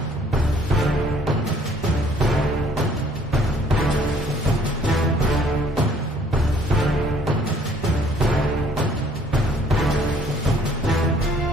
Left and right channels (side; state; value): both; normal; correlation 0.60